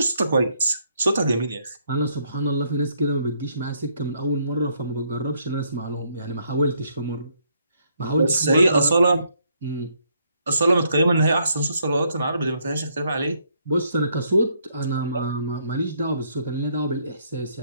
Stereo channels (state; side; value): inverted; both; correlation -0.71